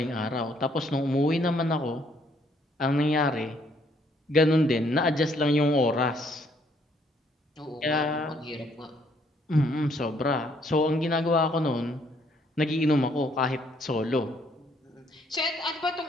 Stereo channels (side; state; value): both; normal; correlation 0.67